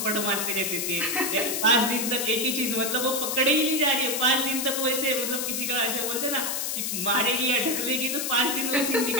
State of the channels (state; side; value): noise; left; hiss, 1 dB below the sound